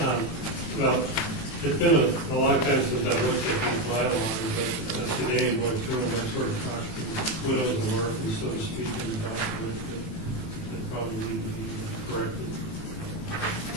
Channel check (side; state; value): right; late; 18 ms